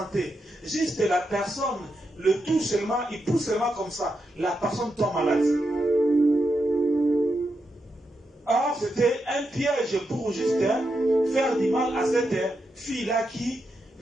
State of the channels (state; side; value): normal; both; correlation 0.85